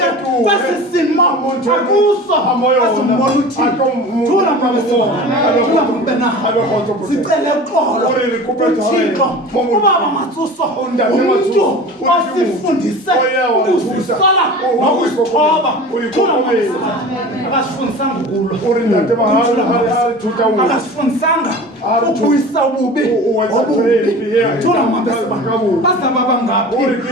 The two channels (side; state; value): both; normal; correlation 0.37